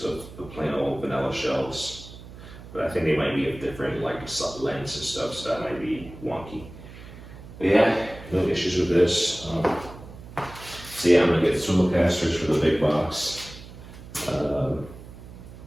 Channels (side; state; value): right; noise; hum, 16 dB below the sound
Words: the plain old vanilla shelves. But I think they might be of different like lengths and stuff, so that might be wonky. But yeah, no issues with this. So yeah, I'm gonna get swivel casters for the big box.